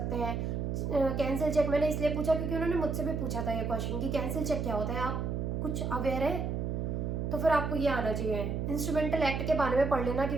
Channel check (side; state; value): right; noise; hum, 1 dB below the sound